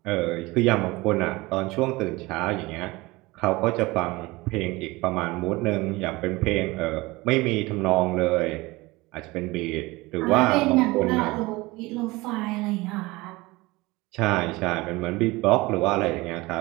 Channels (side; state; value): left; quieter; 21.8 dB